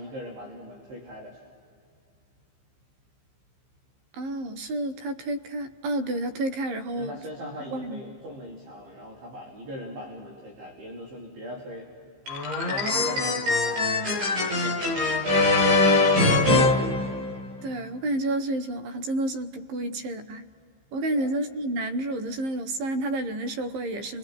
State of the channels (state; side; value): late; left; 15 ms